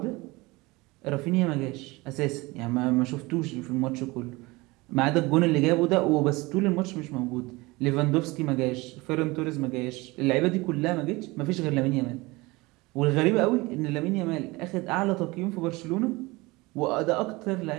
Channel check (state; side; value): quieter; left; 22.7 dB